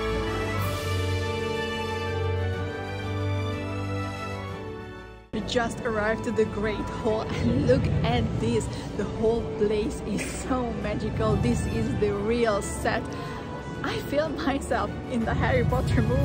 We just arrived to the Great Hall and look at this. The whole place is so magical. This is the real set. I feel myself in the Harry Potter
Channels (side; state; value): both; identical; correlation 1.00